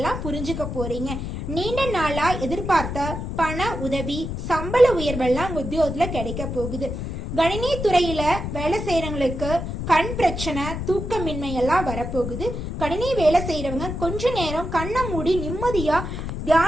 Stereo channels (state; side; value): noise; left; rumble, 5 dB below the sound